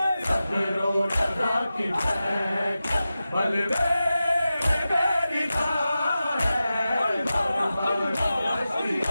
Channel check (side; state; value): both; inverted; correlation -0.93